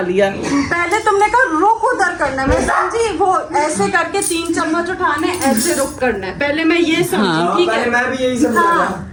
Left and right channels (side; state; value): both; identical; correlation 1.00